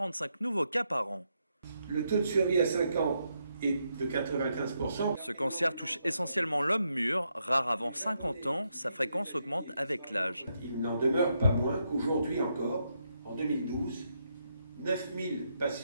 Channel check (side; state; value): both; inverted; correlation -0.80